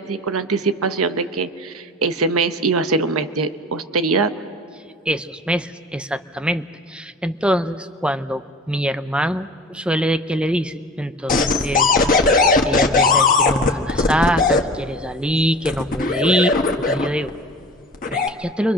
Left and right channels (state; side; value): normal; both; correlation 0.37